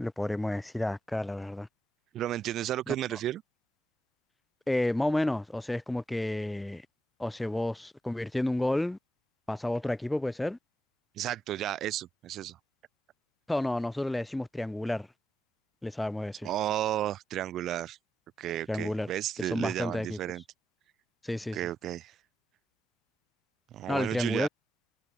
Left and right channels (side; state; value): both; normal; correlation 0.83